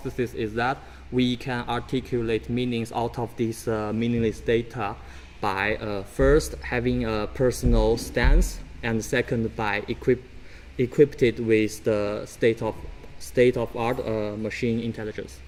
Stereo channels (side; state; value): both; identical; correlation 1.00